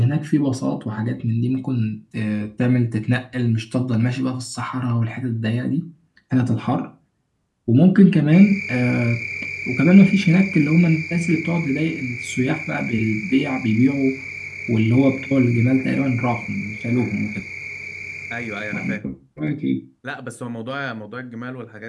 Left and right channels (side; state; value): both; identical; correlation 1.00